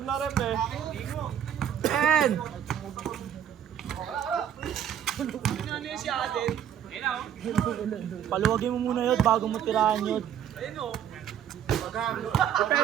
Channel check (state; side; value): quieter; left; 9.7 dB